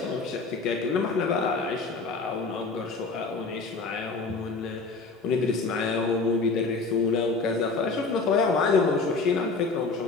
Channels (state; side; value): quieter; right; 4.0 dB